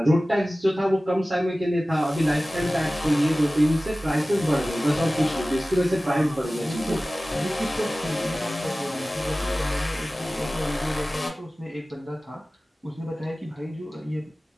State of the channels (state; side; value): normal; both; correlation 0.97